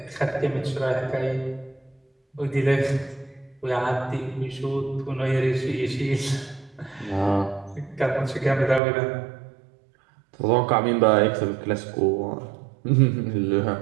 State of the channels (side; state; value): left; drops out; at 8.8 s